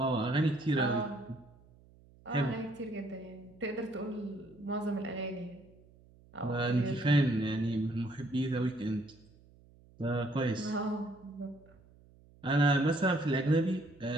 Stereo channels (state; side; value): noise; right; hum, 26 dB below the sound